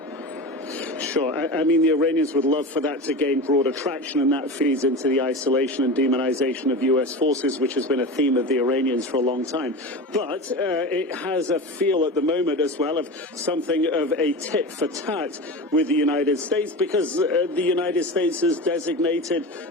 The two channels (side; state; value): both; normal; correlation 0.27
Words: Sure. I mean, the Iranians would love for that to gain broader traction, and that feeds into the isolation and demonization of U.S. forces, which has been a theme of the Iranians for a long time. But it has a feel at the moment as well of something of a tit for tat with the United States, because the United States has designated